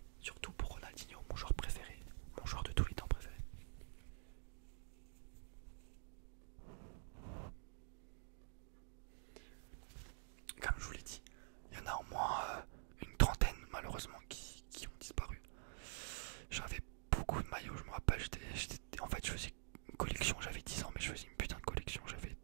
Surtout pour Ronaldinho, mon joueur préféré, mon joueur de tous les temps préféré. Comme je vous l'ai dit, il y en a au moins une trentaine malheureusement qui ont disparu. J'avais beaucoup de maillots, je me rappelle, en fait je faisais une collection, j'avais 10 ans mais je faisais une putain de collection, j'avais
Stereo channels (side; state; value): left; silent; digital silence